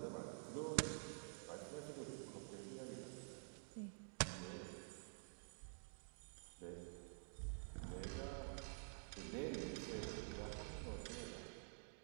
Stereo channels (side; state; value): left; silent; digital silence